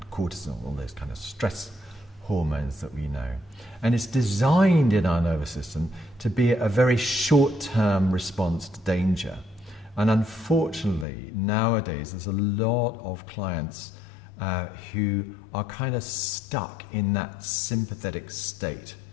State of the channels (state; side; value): drops out; right; at 11.1 s